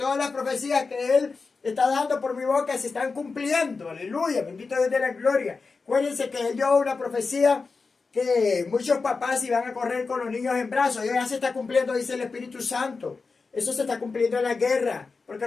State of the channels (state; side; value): quieter; right; 4.4 dB